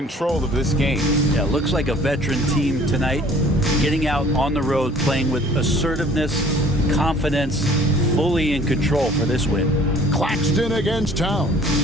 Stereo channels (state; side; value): normal; both; correlation 0.53